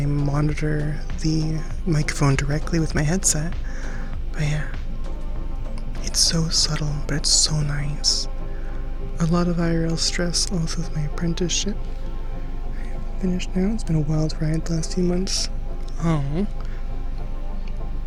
monitor the microphone directly with my headset. But yeah, it's so subtle, but it's so nice. A lot of IRL stress also with my apprenticeship. Finished now. It's been a wild ride the last few months. Oh.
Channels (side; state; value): both; identical; correlation 1.00